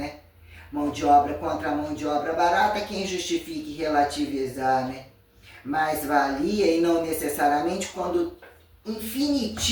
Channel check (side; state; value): both; identical; correlation 1.00